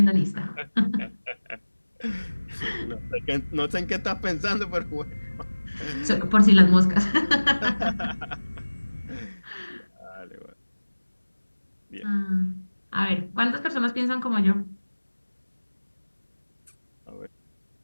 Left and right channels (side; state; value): both; inverted; correlation -1.00